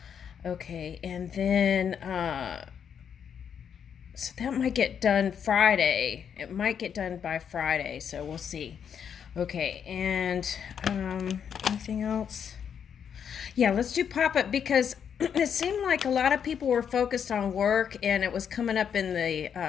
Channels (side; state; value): right; quieter; 7.8 dB